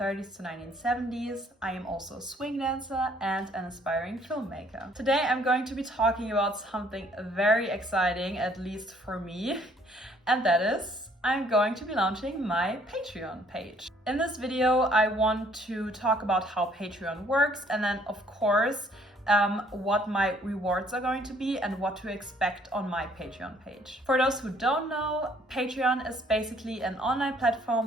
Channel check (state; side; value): normal; both; correlation 0.62